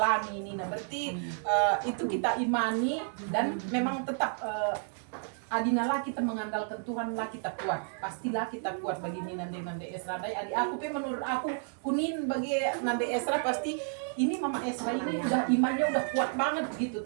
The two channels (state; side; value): silent; left; 57 dB below the other